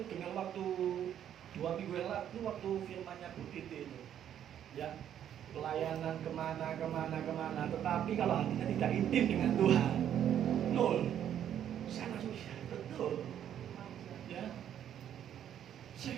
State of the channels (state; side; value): quieter; left; 10.1 dB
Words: dengar waktu 2 minggu yang lalu waktu firmannya Bu Titi itu, ya, pelayanan kemana, tetapi kalau hatinya tidak intim dengan Tuhan, nol. Saya langsung betul, ya,